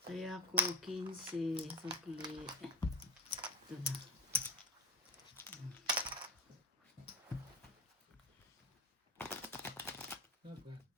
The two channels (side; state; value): both; normal; correlation 0.19